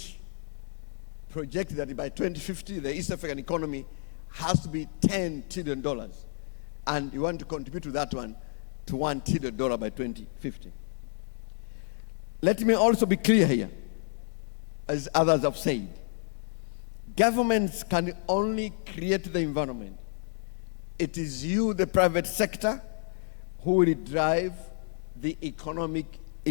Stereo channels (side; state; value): right; silent; digital silence